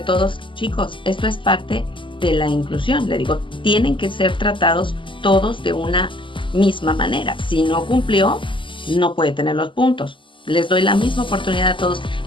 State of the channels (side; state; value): right; late; 0.25 ms